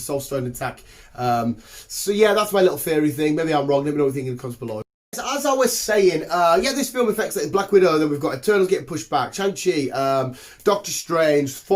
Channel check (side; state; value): both; identical; correlation 1.00